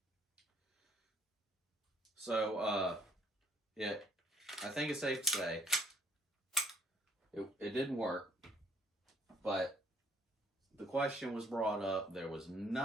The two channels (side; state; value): both; normal; correlation 0.64